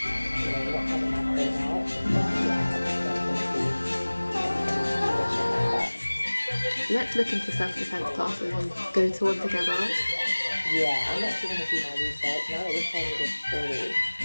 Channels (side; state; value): both; inverted; correlation -1.00